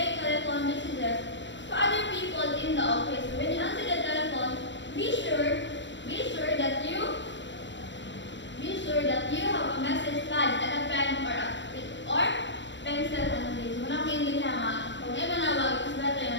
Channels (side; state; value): right; late; 0.53 ms